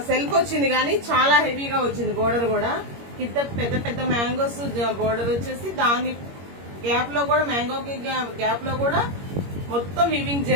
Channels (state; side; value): late; left; 21 ms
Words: సెల్ఫ్ వచ్చింది కానీ చాలా హెవీగా వచ్చింది. బోర్డర్ కూడా కింద పెద్ద పెద్ద మ్యాంగోస్ బోర్డర్ వచ్చేసి దాని గ్యాప్ లో కూడా, మ్యాంగోకి గ్యాప్ లో కూడా మొత్తం వీవింగ్